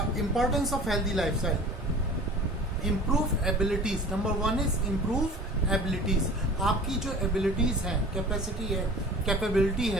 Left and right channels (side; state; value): both; normal; correlation 0.42